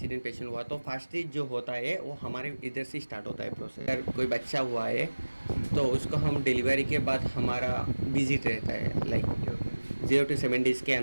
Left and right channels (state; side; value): inverted; both; correlation -1.00